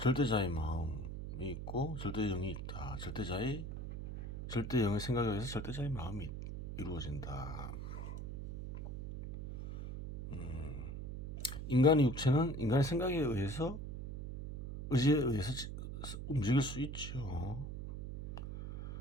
마음이 있고 절대의 영이 있다. 절대의 생각에 의해서 절대자의 마음이 이루어진다. 인간의 육체는 인간의 생각에 의해서, 의지에 의해서 움직일 수 있죠.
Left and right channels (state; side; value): noise; right; hum, 7 dB below the sound